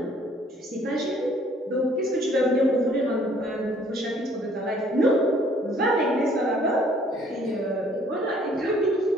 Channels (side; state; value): both; normal; correlation 0.60